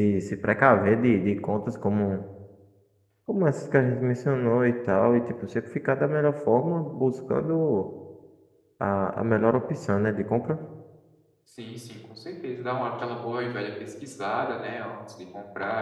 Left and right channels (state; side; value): identical; both; correlation 1.00